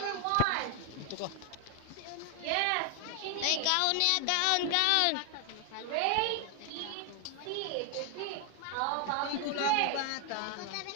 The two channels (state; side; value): different; both; correlation 0.00